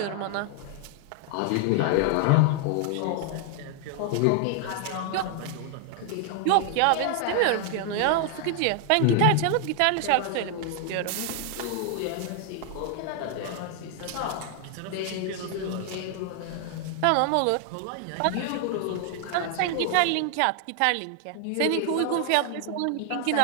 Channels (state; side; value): different; both; correlation 0.00